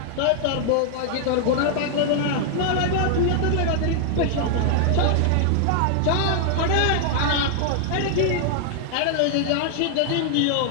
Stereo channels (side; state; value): both; different; correlation 0.00